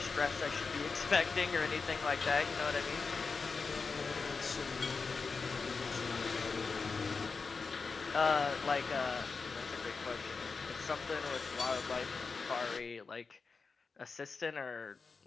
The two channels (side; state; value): right; quieter; 4.7 dB